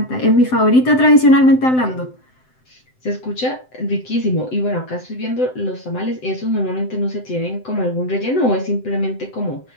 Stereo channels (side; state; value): right; late; 7.8 ms